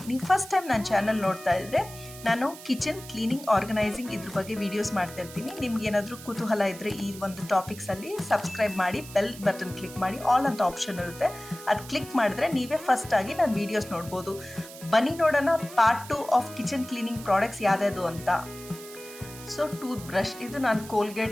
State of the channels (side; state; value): right; noise; hiss, 16 dB below the sound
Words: ನೀವು ಫಸ್ಟ್ ಟೈಮ್ ನನ್ನ ಚಾನಲ್ ನೋಡ್ತಾ ಇದ್ದರೆ ನಾನು ಕಿಚನ್ ಕ್ಲೀನಿಂಗ್ ಆರ್ಗನೈಸಿಂಗ್ ಇದ್ರ ಬಗ್ಗೆ ವೀಡಿಯೋಸ್ ಮಾಡ್ತಾ ಇರ್ತೀನಿ. ನಿಮ್ಗೆ ಏನಾದರೂ ಕುತೂಹಲ ಇದ್ದರೆ ಈ ಒಂದು ಟಾಪಿಕ್ಸಲ್ಲಿ ಸಬ್ಸ್ಕ್ರೈಬ್ ಮಾಡಿ, ಬೆಲ್ ಬಟನ್ ಕ್ಲಿಕ್ ಮಾಡಿ, ಆಲ್ ಅಂತ ಆಪ್ಷನ್ ಇರುತ್ತೆ. ಅದು ಕ್ಲಿಕ್ ಮಾಡಿದ್ರೆ ನೀವೇ ಫಸ್ಟ್ ಆಗಿ ನನ್ನ ವೀಡಿಯೋಸ್ ನೋಡ್ಬೋದು. ಬನ್ನಿ ನೋಡೋಣ part 2 of kitchen cleaning products ಯಾವ್ದು ಅಂತ. ಸೊ ಟೂತ್ ಬ್ರಷ್, ಇದು ನಾನು